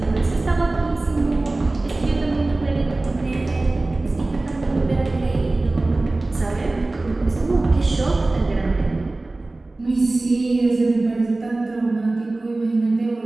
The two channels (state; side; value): quieter; left; 3.0 dB